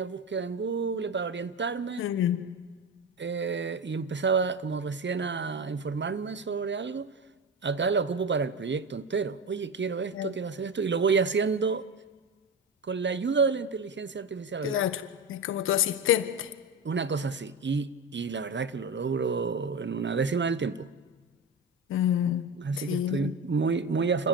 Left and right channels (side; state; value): both; normal; correlation 0.21